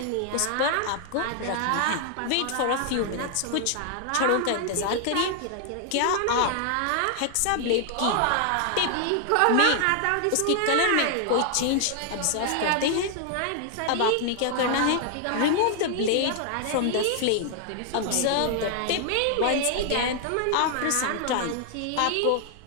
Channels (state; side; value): different; both; correlation 0.00